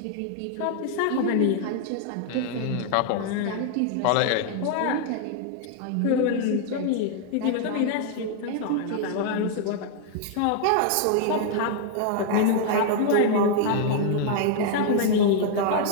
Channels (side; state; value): both; different; correlation 0.00